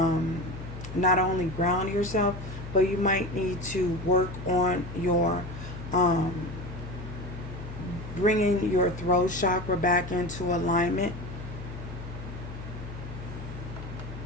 not only ground yourself, but you might need to work on your bringing your throat chakra back into alignment.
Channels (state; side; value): noise; left; hum, 10 dB below the sound